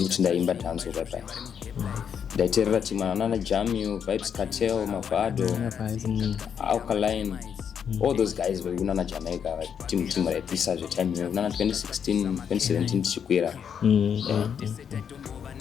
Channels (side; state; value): right; quieter; 7.7 dB